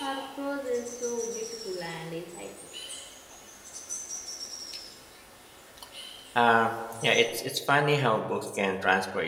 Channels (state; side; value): identical; both; correlation 1.00